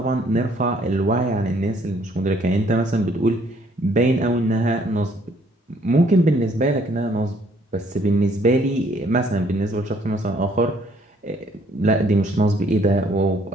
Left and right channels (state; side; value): normal; both; correlation 0.64